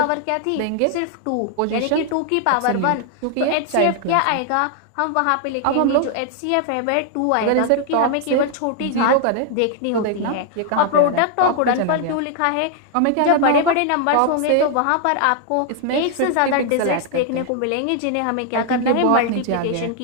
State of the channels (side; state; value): both; different; correlation 0.00